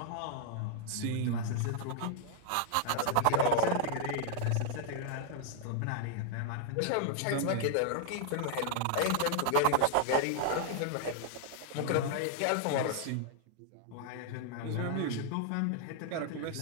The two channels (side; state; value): both; different; correlation 0.00